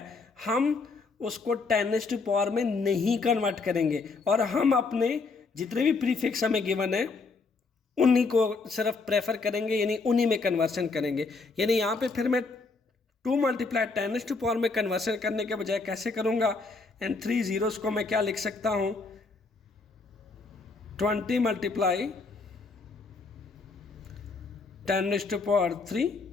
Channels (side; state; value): right; quieter; 4.1 dB